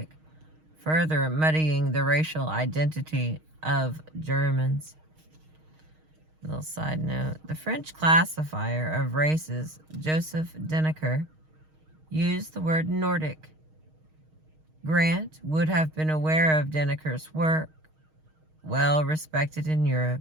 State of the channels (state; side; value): late; left; 6.4 ms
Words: further muddying the racial identity of Germans. Little side note, the French classifier of races, Joseph Deneker, used the word Nordic. Grant would have been aware of Deneker's work, well respected in Europe,